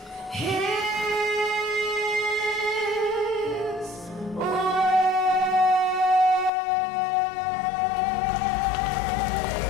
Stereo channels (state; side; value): drops out; right; at 6.5 s